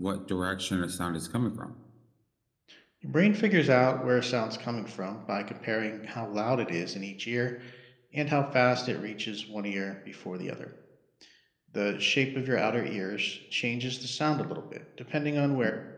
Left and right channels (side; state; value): both; identical; correlation 1.00